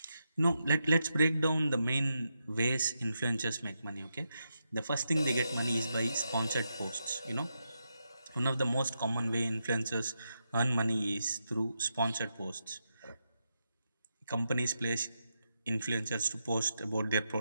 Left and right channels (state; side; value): inverted; both; correlation -0.85